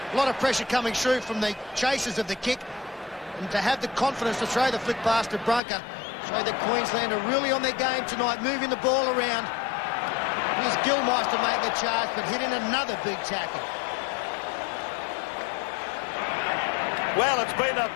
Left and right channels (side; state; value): right; drops out; at 5.6 s